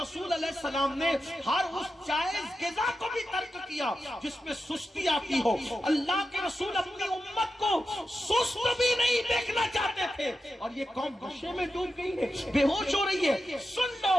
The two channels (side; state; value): both; normal; correlation 0.90